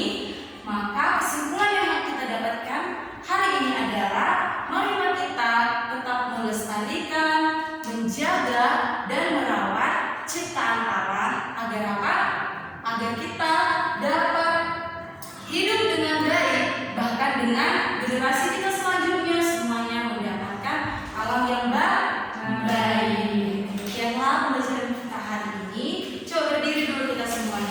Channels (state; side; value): identical; both; correlation 1.00